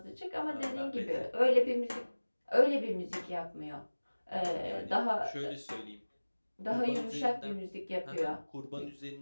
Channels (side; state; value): both; inverted; correlation -1.00